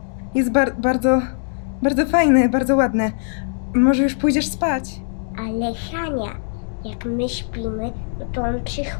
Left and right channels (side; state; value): right; silent; digital silence